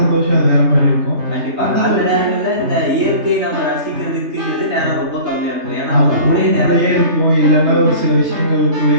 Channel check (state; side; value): late; left; 3.3 ms